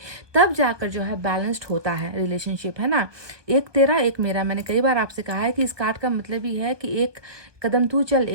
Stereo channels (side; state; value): left; late; 1.2 ms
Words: तब जाकर जो है बैलेंस्ड होता है रिलेशनशिप, है ना। एक तेरा एक मेरा, मैंने कई बार आपसे कहा है कि इस कार्ड का मतलब ही है कि एक कदम तू चल,